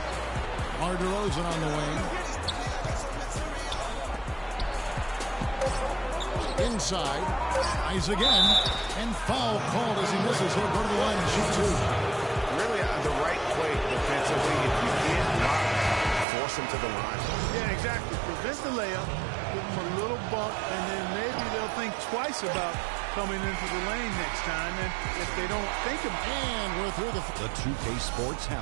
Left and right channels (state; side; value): drops out; left; at 16.2 s